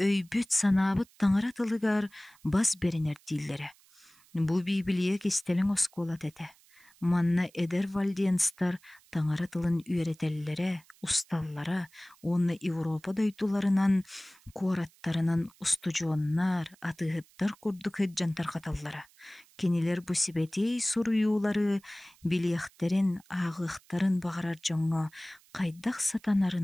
санаабыт таңара тылыгар бас беренер диллере. Бу Библия кистелин оскуолат эте. Манна эдер вальдиенстар таңара тылын үйретеллере, усталлара, онны Европа дойдуларынан, куараттарынан устужуоннар, атыгыттар курдук hyджантар каталлара. Кинилер бу сибетей суруюлары, билиэхтерин, ағыхтарын бағарар жоңго, кайдах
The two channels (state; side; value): noise; right; hiss, 29 dB below the sound